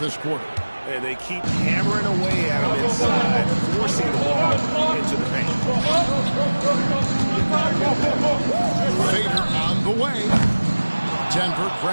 quarter. And they keep hammering away at him inside, forcing the ball into the paint. Fader on the way. Denver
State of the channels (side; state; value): both; inverted; correlation -1.00